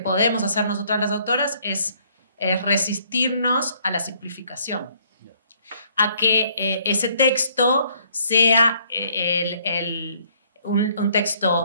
podemos hacer nosotras las autoras es resistirnos a la simplificación, a que ese texto sea un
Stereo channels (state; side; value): inverted; both; correlation -0.64